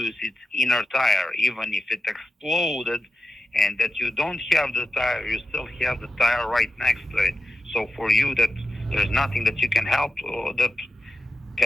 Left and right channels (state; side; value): normal; both; correlation 0.90